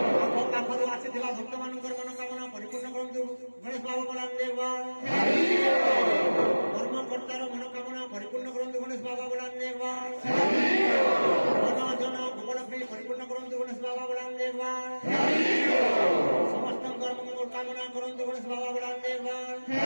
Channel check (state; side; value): inverted; both; correlation -1.00